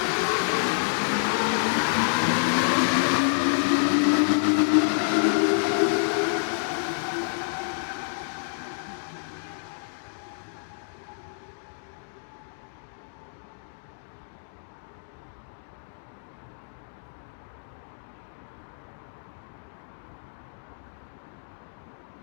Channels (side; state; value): right; silent; digital silence